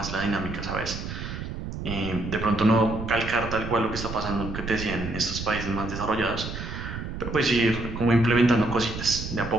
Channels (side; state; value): right; noise; rumble, 7 dB below the sound